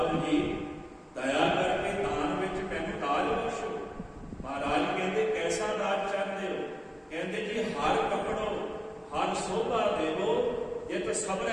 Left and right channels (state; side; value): identical; both; correlation 1.00